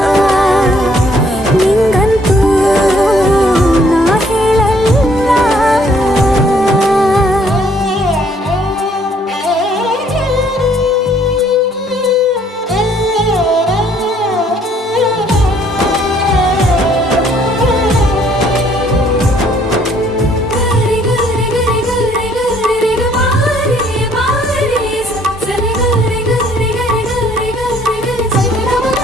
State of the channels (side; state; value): both; normal; correlation 0.63